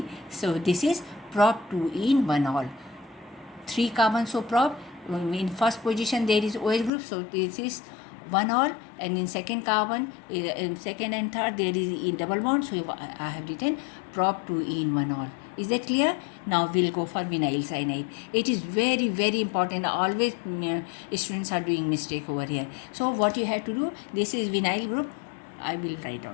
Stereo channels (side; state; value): right; drops out; at 6.9 s